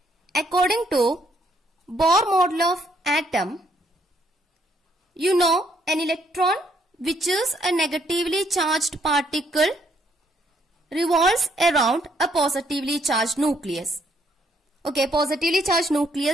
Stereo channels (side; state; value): both; normal; correlation 0.70